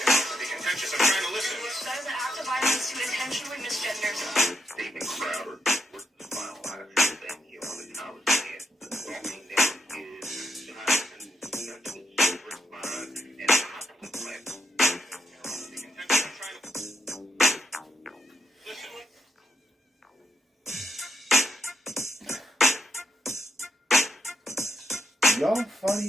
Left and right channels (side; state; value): both; normal; correlation 0.81